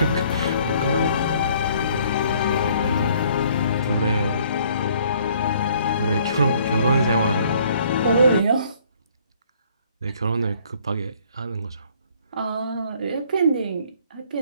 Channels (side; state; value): both; inverted; correlation -0.60